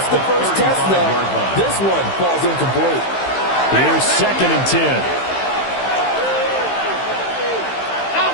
the first test, though. This one falls incomplete. Here's 2nd and 10.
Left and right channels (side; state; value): right; late; 15 ms